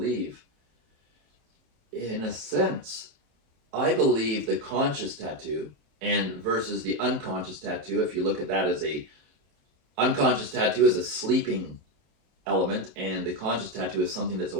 in a sense, I believe the conscious tattoo and versus the unconscious tattoo, if you look at that as a unconscious tattoo is a sleeping element, and the conscious tattoo is something that's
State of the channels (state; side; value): late; left; 27 ms